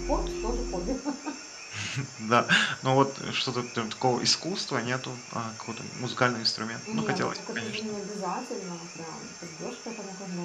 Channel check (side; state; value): both; identical; correlation 1.00